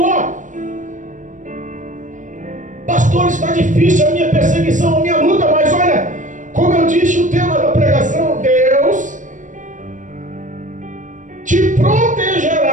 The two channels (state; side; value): late; left; 0.37 ms